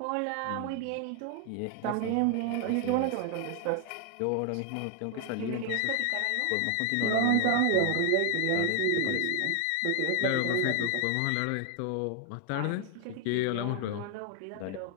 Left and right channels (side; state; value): both; different; correlation 0.00